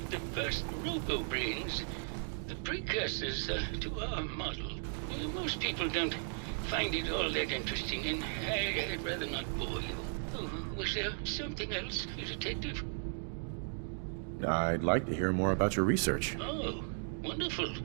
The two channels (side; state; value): left; silent; 54 dB below the other